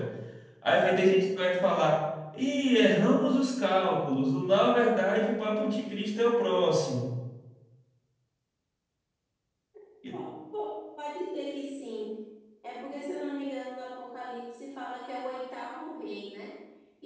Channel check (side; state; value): both; identical; correlation 1.00